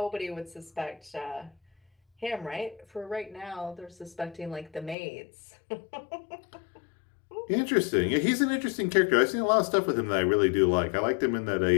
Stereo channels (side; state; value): right; drops out; at 5.0 s